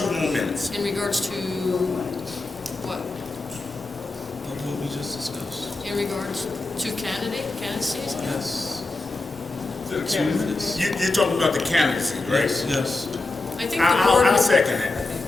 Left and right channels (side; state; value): right; quieter; 3.3 dB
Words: more minutes. In regards to what? What we just discussed. In regards to candidacies? Yes. 2 minutes. You're talking about the candidacy, right? Yes. I think the board. I'll second that.